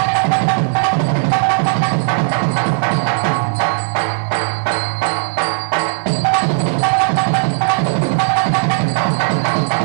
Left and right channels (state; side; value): silent; left; 69 dB below the other